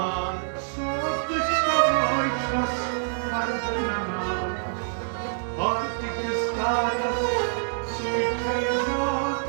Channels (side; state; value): left; silent; digital silence